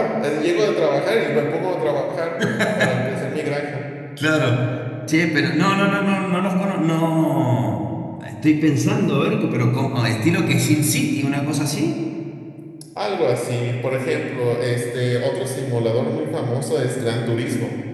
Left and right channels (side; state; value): both; identical; correlation 1.00